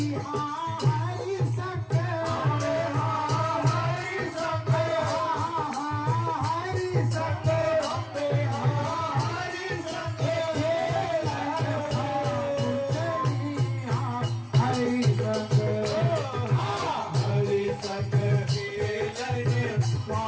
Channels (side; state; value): both; identical; correlation 1.00